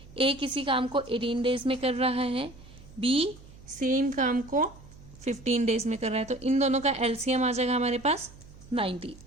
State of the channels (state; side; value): noise; right; hum, 20 dB below the sound